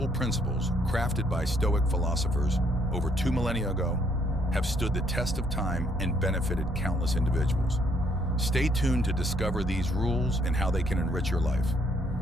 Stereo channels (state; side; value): normal; both; correlation 0.68